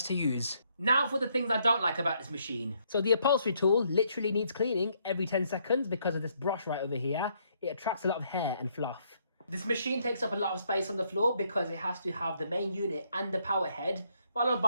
to use. Now for the things I don't like about this machine. So the upholstery tool literally needs cleaning every 10 seconds because of this brush right over here. It attracts a lot of hair and fluff. This machine takes up a lot of space on the floor because it has to have the main unit and the power head, followed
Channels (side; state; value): both; inverted; correlation -0.71